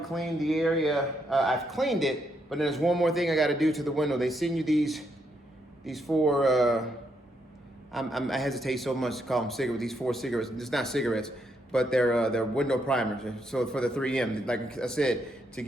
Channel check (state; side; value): normal; both; correlation 0.77